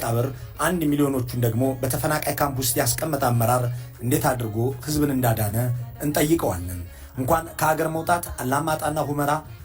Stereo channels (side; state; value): both; identical; correlation 1.00